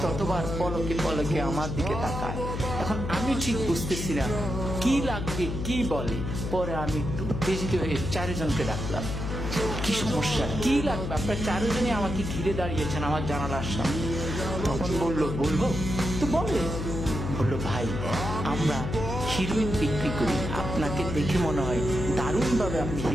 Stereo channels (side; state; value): left; noise; hum, 4 dB below the sound